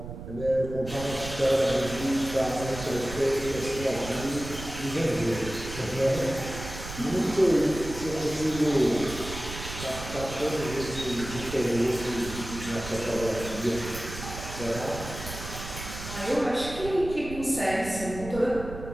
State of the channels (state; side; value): noise; right; rumble, 10 dB below the sound